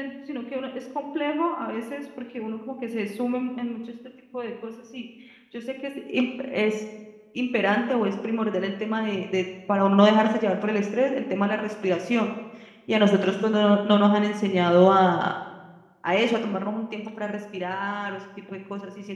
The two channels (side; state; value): both; identical; correlation 1.00